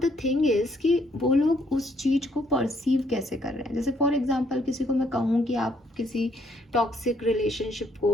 thing is कि वो लोग उस चीज़ को परसीव कैसे कर रहे हैं। जैसे फॉर एग्जांपल किसी को मैं कहूँ कि आप किसी टॉक्सिक रिलेशनशिप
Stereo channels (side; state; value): both; normal; correlation 0.69